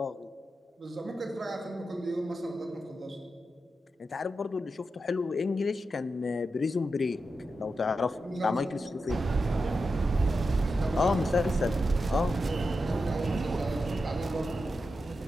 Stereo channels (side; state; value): both; normal; correlation 0.89